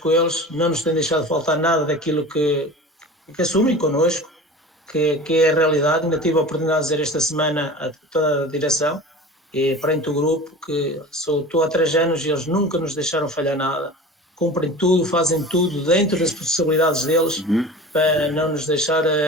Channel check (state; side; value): normal; both; correlation 0.36